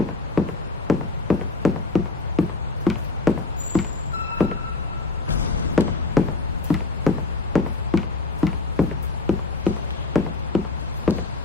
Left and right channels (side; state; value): right; quieter; 3.6 dB